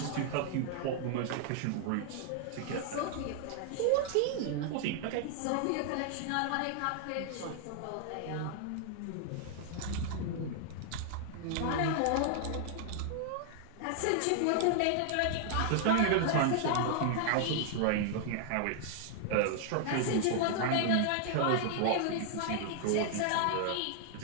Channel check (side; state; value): both; different; correlation 0.00